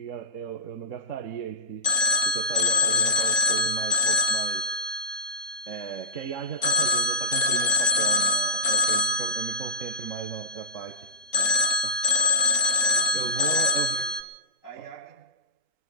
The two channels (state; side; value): late; right; 3.7 ms